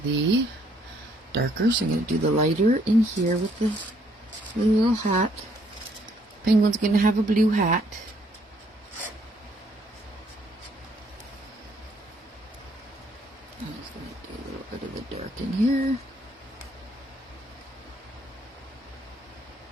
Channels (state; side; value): normal; both; correlation 0.67